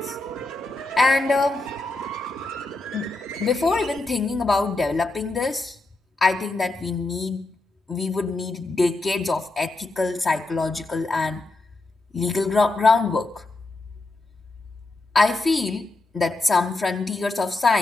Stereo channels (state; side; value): quieter; right; 3.0 dB